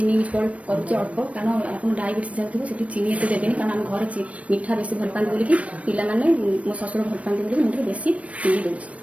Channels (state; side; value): late; left; 0.065 ms